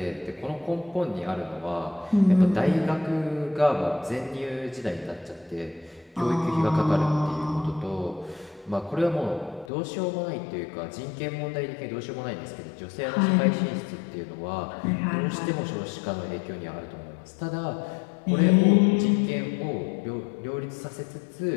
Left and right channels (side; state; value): right; drops out; at 9.7 s